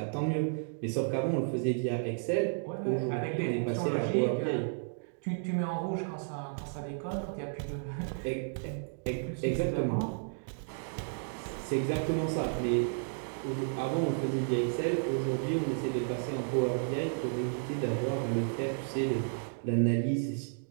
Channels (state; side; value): silent; left; digital silence